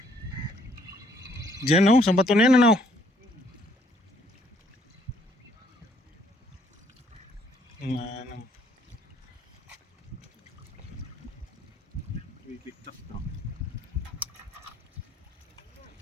Diyan oh, sa bato na yan ano. Ano. Bibigtas na.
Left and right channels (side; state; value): both; normal; correlation 0.66